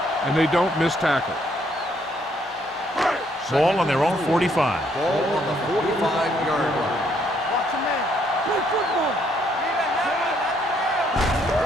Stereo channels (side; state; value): both; normal; correlation 0.69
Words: and they don't miss tackle. Ball on their own 45. Ball on the 45-yard line.